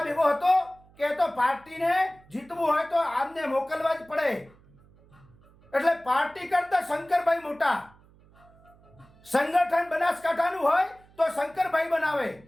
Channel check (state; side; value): noise; right; hum, 28 dB below the sound